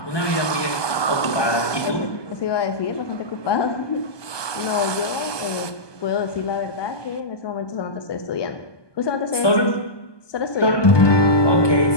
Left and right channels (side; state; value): right; late; 1.2 ms